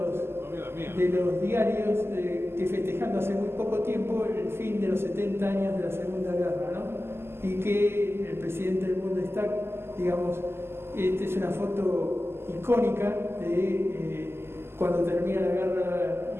de los diarios que festejando hace muy poco tiempo el fin de los 70 años de la Segunda Guerra, ¿no? Y que el presidente del Bundestag, digamos, esta es una foto icónica de cuando termina la guerra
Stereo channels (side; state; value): left; late; 0.12 ms